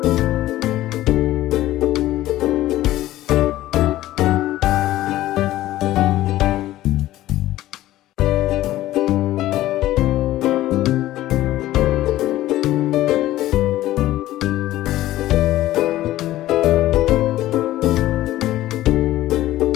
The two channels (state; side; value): quieter; right; 15.1 dB